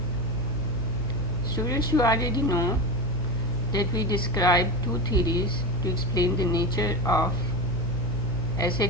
Students, you already know that we describe two theories to explain the nature of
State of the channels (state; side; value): noise; left; hum, 8 dB below the sound